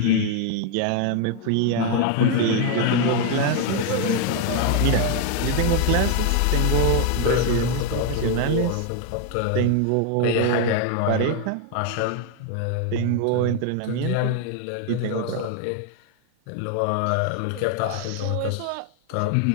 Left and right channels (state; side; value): different; both; correlation 0.01